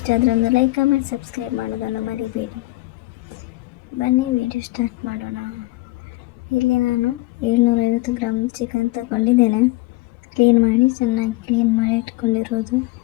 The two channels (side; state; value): right; quieter; 20.5 dB